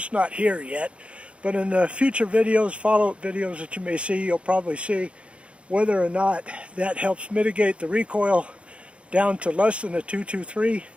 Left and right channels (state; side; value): late; left; 0.060 ms